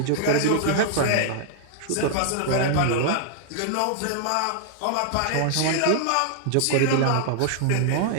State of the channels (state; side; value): different; both; correlation -0.01